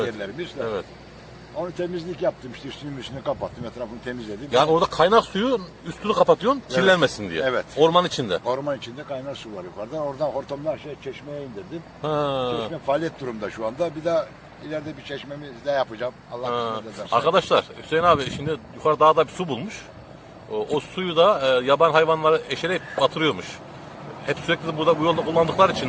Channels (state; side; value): identical; both; correlation 1.00